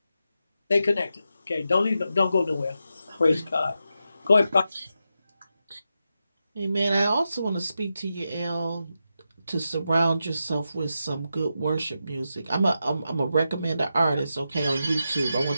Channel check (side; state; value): both; inverted; correlation -0.88